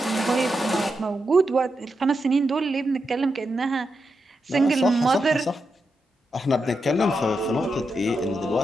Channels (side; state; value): both; normal; correlation 0.86